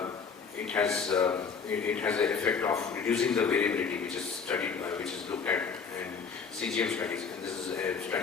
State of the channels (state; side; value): quieter; right; 5.8 dB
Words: it has an effect of reducing the variability, which is studied, which is looked at in CGM studies. And this is a